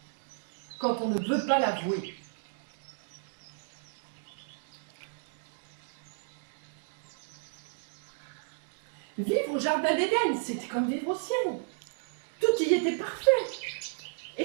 quand on ne veut pas l'avouer. Vivre au jardin d'Éden, c'était comme vivre au ciel. Tout y était parfait.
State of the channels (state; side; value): silent; left; digital silence